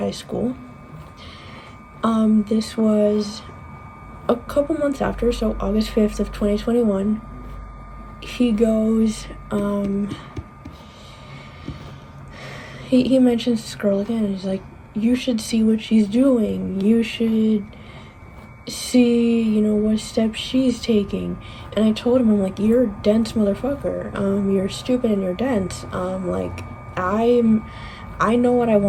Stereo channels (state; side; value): identical; both; correlation 1.00